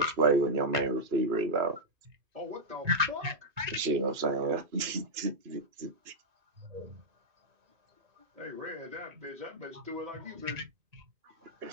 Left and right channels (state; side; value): late; left; 2.5 ms